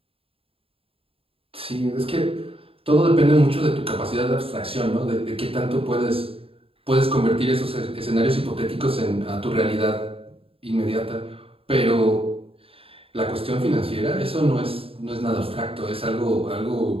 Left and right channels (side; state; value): left; late; 0.27 ms